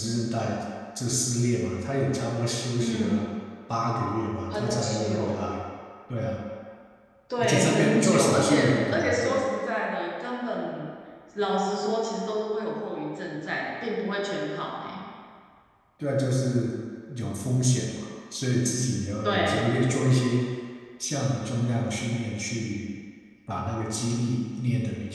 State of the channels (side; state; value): both; identical; correlation 1.00